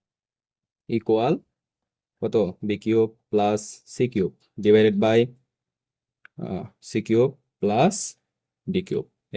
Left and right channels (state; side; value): identical; both; correlation 1.00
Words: equal কত, b cube plus c cube divided by c cube plus d cube.